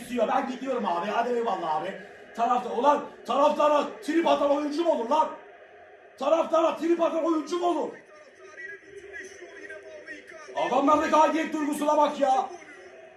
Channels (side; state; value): both; identical; correlation 1.00